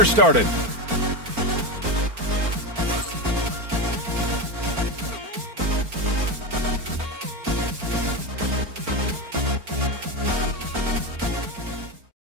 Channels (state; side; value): late; left; 4.4 ms